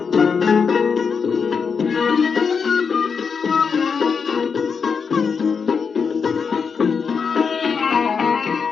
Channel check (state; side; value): quieter; right; 5.9 dB